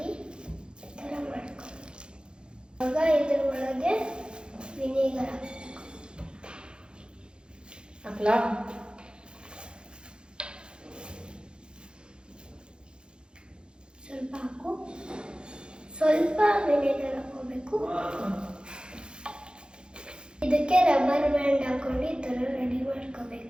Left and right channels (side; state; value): left; late; 0.050 ms